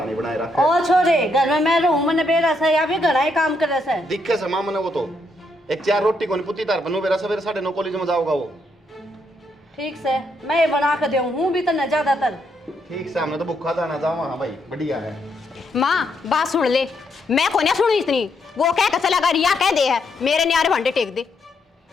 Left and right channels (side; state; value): both; normal; correlation 0.76